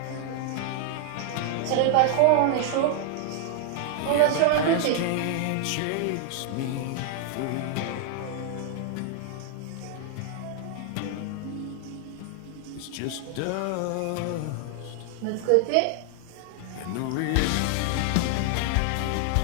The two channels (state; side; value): different; both; correlation 0.00